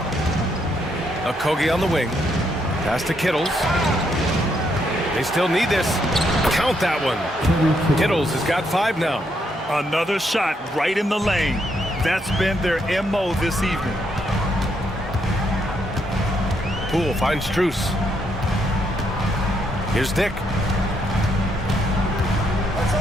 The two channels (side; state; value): both; normal; correlation 0.76